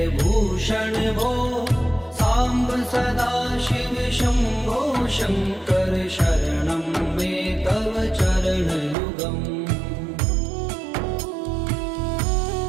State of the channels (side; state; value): left; drops out; at 9.0 s